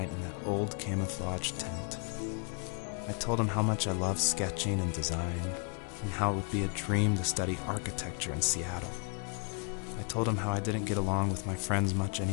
in that old camouflage tent. I told him how much I love sketching and design, and how it would be a dream to study architecture in Seattle. I told him how I didn't get along with my friends much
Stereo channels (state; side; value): quieter; right; 36.7 dB